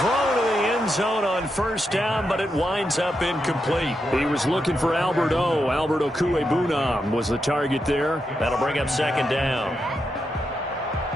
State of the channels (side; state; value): both; normal; correlation 0.85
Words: to the end zone on first down, but it winds up incomplete. He was looking for Albert Okuebunam was the target there. That'll bring up second down.